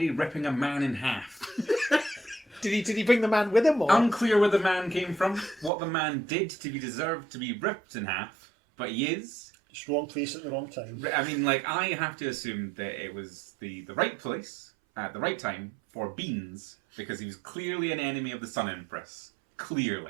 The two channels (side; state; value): left; drops out; at 5.7 s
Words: ripping a man in half. Did he bring the man with him, or? Unclear where the man came from, what the man did to be deserved to be ripped in half, but he is. Just wrong place at the wrong time. I mean, I have to assume that it was the right place at the right time for Beans, because he was clearly an enemy of the Sun Empress.